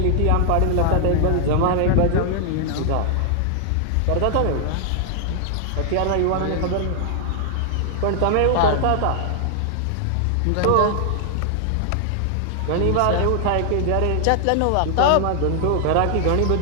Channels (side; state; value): both; different; correlation 0.00